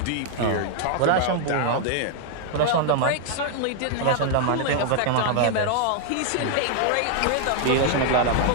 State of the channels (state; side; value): different; both; correlation 0.00